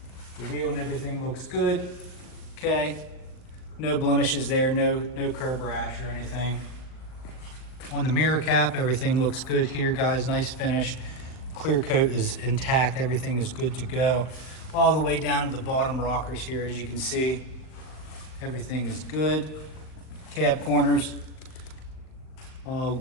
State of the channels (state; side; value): late; right; 39 ms